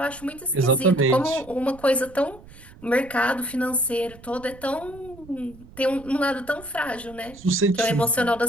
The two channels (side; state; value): right; noise; rumble, 21 dB below the sound